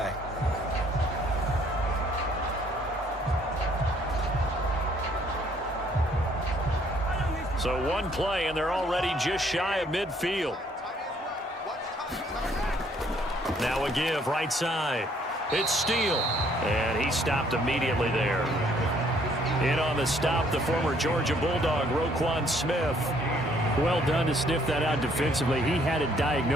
So one play, and they're already just shy of midfield. Now a give right side. It's Steele, and he stopped immediately there. In on the stop, the former Georgia Bulldog, Roquan Smith. Well done to sniff that out defensively. He had it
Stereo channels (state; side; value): normal; both; correlation 0.64